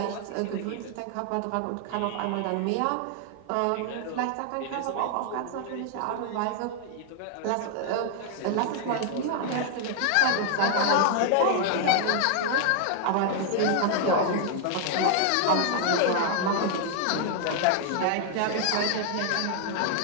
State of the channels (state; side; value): different; both; correlation 0.00